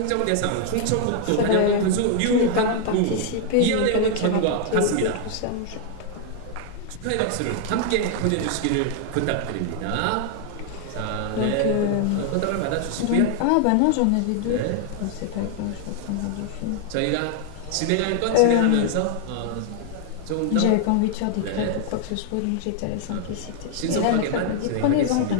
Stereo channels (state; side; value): different; both; correlation 0.00